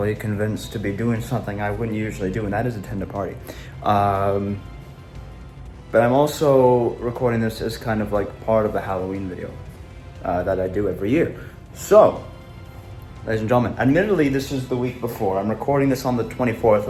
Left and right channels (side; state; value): both; identical; correlation 1.00